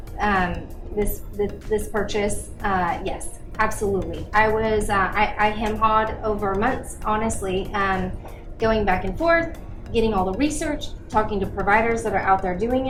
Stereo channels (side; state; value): both; identical; correlation 1.00